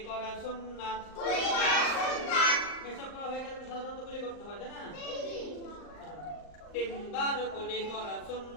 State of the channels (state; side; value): late; right; 39 ms